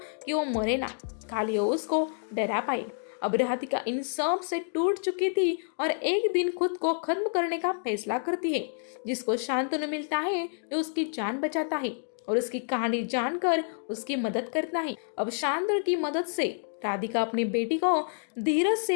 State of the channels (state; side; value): silent; right; digital silence